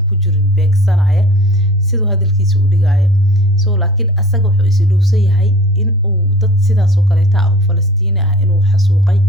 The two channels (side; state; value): both; normal; correlation 0.44